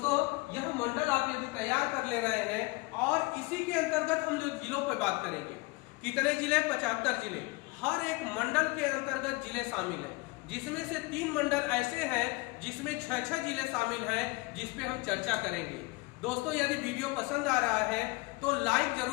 यह मंडल आप यदि तैयार कर ले रहे हैं, और इसी के अंतर्गत हम लोग जिलों पर बात करेंगे। कितने जिले? 75 जिले। हर एक मंडल के अंतर्गत जिले शामिल हैं, जिसमें से 3 मंडल ऐसे हैं जिसमें 6-6 जिले शामिल हैं, जिसपे हम चर्चा करेंगे। दोस्तों यदि वीडियो पसंद आ रहा है तो लाइक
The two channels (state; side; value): quieter; right; 24.3 dB